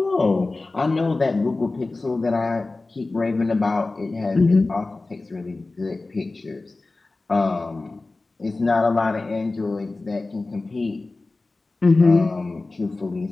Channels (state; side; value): quieter; right; 3.3 dB